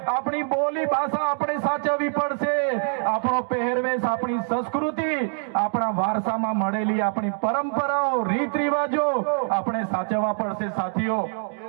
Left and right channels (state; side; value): silent; left; 61 dB below the other